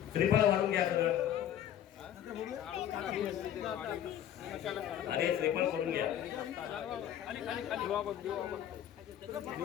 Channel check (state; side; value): quieter; right; 10.6 dB